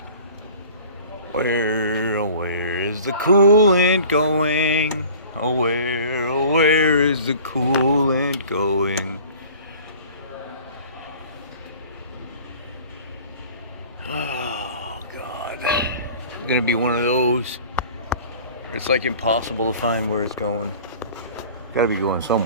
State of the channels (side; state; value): both; inverted; correlation -0.45